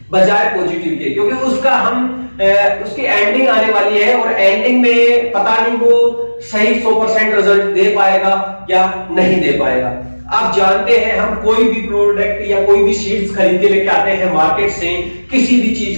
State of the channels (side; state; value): both; inverted; correlation -1.00